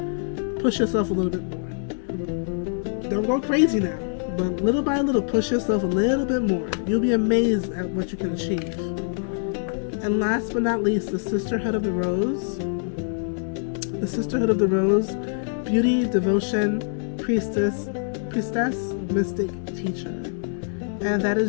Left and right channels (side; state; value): right; silent; digital silence